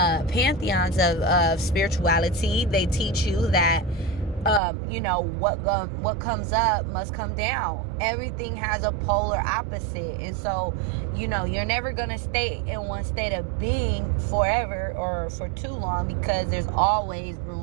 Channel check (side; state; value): left; drops out; at 4.6 s